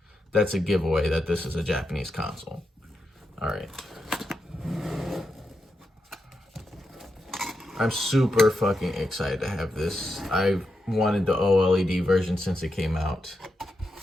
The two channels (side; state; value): both; normal; correlation 0.86